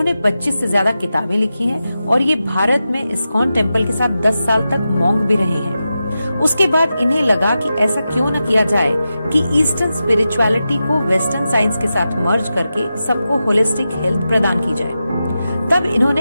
25 से ज्यादा किताबें लिखी हैं और ये भारत में इस्कॉन टेम्पल के साथ 10 साल तक मॉन्क भी रहे हैं। उसके बाद इन्हें लगा कि ऐसा क्यों न किया जाए कि ईस्टर्न स्पिरिचुअलिटी को वेस्टर्न साइंस के साथ मर्ज करके सबको होलिस्टिक हेल्थ प्रदान की जाए। तब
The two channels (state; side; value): inverted; both; correlation -0.91